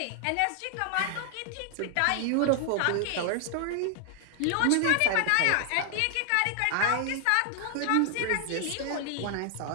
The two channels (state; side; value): different; both; correlation 0.00